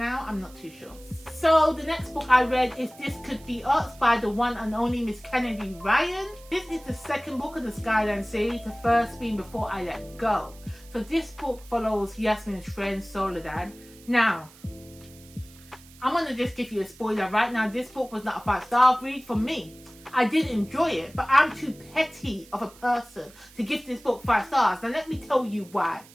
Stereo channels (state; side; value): noise; right; hiss, 23 dB below the sound